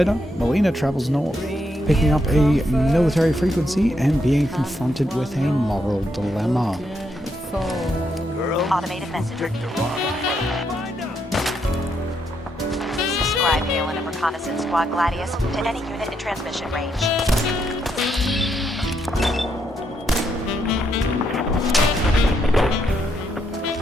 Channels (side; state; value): both; normal; correlation 0.78